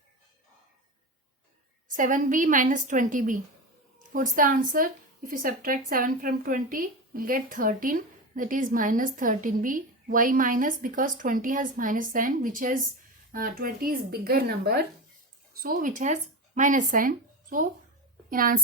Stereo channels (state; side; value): normal; both; correlation 0.22